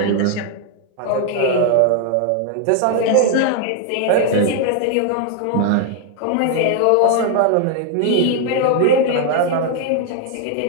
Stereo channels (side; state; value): both; different; correlation 0.00